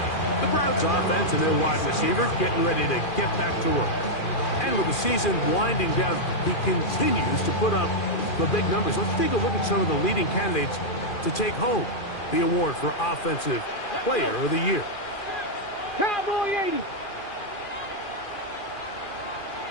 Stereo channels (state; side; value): late; right; 2.4 ms